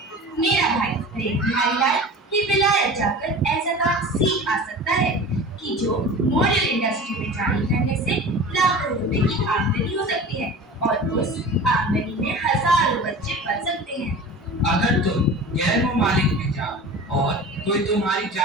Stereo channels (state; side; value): normal; both; correlation 0.36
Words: मेरा भाई प्रेम बिहारी लाल ही विलायत जाकर ऐसा काम सीख आ सकता है कि जो मॉडल इंडस्ट्री में जारी करने से लाखों रुपए की आमदनी हो सकती है और उस आमदनी में हजारों बच्चे पल सकते हैं। अगर तुम गैर मुमालिक में जाओ और कोई तुम्हारी